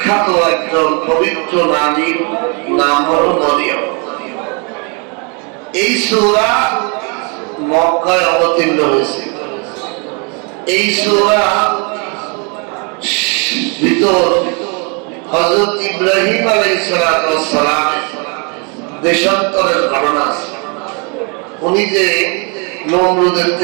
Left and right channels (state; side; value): quieter; left; 34.8 dB